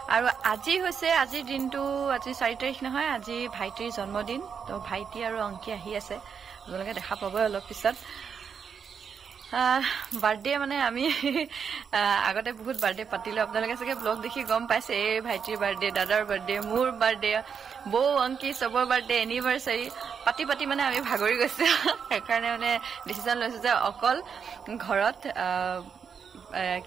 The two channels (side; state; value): left; quieter; 6.7 dB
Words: আৰু আজি হৈছে আজিৰ দিনটো আজি 4 তাৰিখ নহয় আজি ভাইটিৰ জন্মদিন তো ভাইটি আৰু অংকি আহি আছে আপোনালোকে দেখা পাব অলপ পিছত বাৰ্থডে মানে আমি আগতে বহুত বাৰ্থডে পাতিলো আপোনালোকে চাগে ব্লগ দেখি গম পাইছে এই ভাইটিৰ বাৰ্থডে দাদাৰ বাৰ্থডে মোৰ বাৰ্থডে বৌ অংকি সবৰ বাৰ্থডে এনিভাৰ্সাৰী পাতি পাতি মানে আমি ভাগৰি গৈছে সেইকাৰণে মানে ডিসিশন লৈছো যে অকল ঘৰত